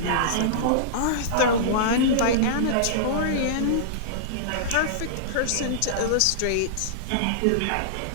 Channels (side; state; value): both; different; correlation -0.02